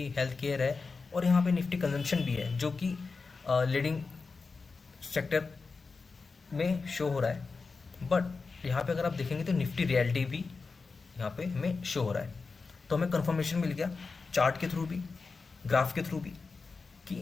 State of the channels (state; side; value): quieter; right; 4.4 dB